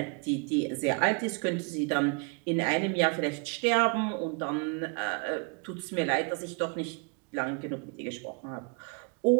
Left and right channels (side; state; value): left; quieter; 34.0 dB